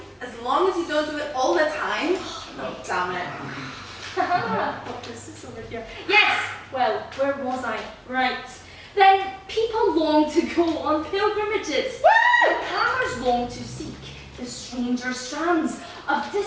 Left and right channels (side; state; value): both; identical; correlation 1.00